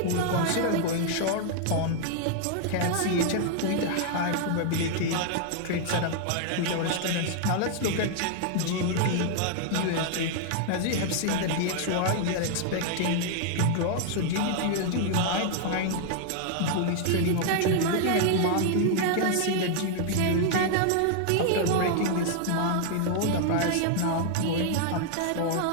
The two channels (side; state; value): both; different; correlation 0.00